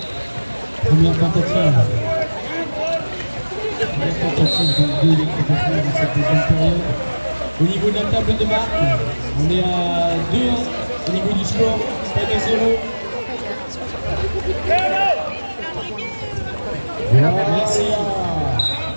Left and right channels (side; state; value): both; inverted; correlation -1.00